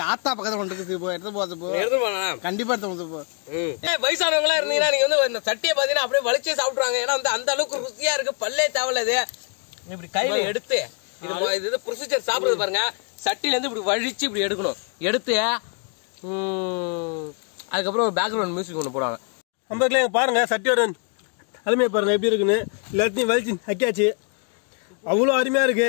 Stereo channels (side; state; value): right; quieter; 40.0 dB